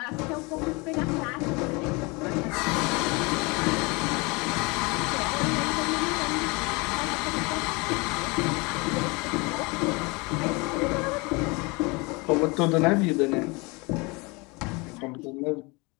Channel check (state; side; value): quieter; right; 27.3 dB